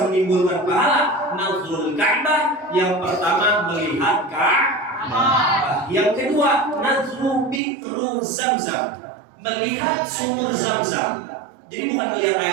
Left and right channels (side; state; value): left; drops out; at 7.6 s